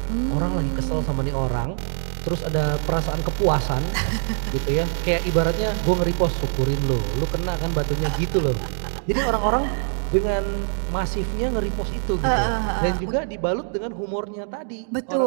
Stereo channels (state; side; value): silent; left; digital silence